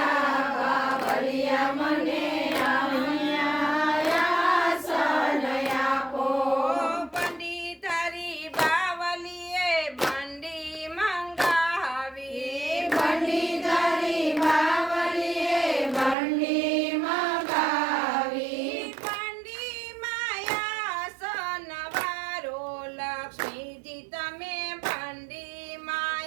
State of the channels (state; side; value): drops out; left; at 16.2 s